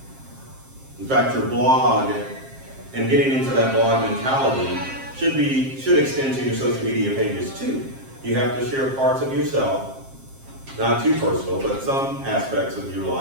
In fact, your blog and getting into that blog mentality should extend to your social media pages too. You have to share parts of yourself, not too personal, but some aspects of your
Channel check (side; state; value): left; late; 7.5 ms